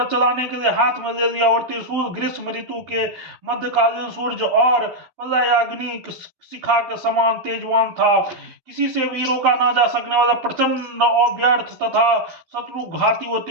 चलाने के लिए हाथ में ले लिया और त्रिशूल ग्रीष्म ऋतु के मध्यकालीन सूर्य और प्रलयाग्नि शिखा के समान तेजवान था। किसी से भी रोका ना जा सकने वाला प्रचंड और व्यर्थ तथा शत्रु घाती वो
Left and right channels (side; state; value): left; late; 11 ms